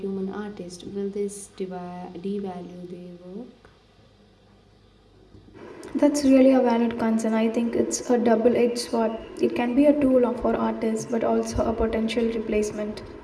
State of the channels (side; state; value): both; identical; correlation 1.00